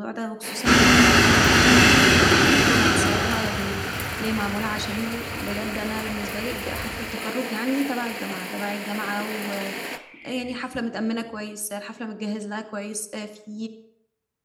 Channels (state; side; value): identical; both; correlation 1.00